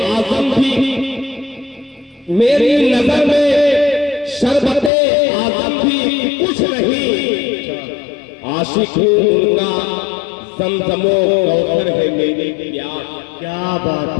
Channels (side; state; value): right; drops out; at 4.9 s